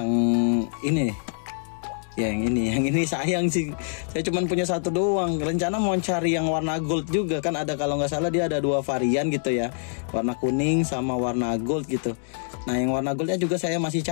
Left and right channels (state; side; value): silent; right; digital silence